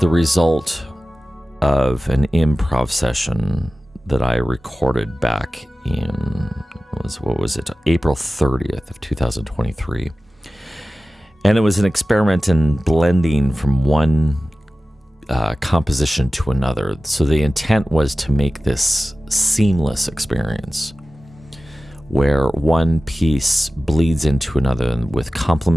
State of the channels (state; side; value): normal; both; correlation 0.96